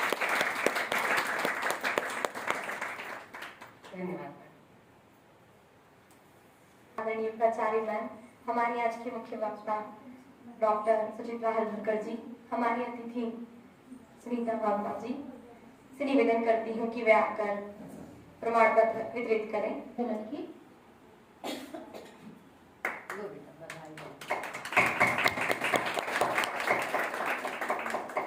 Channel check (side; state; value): both; identical; correlation 1.00